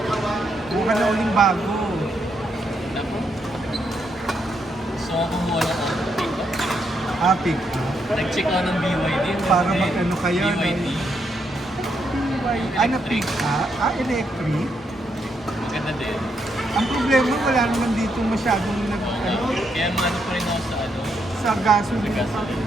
Buka na uling bago. Naku. Gusto ko kumuha ng pick up. Pick. Nag-check ako ng BYD. Para mag-ano kayo, no? BYD. Ano pick electric? Maganda din. Ang problema, wala naman dito masyadong Kaya ano pa rin ako sa sa gasoline.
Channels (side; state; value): both; normal; correlation 0.78